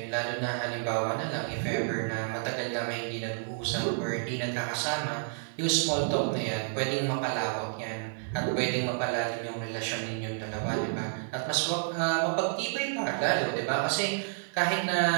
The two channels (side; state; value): left; silent; digital silence